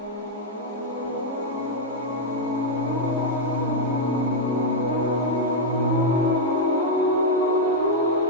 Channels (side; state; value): both; normal; correlation -0.02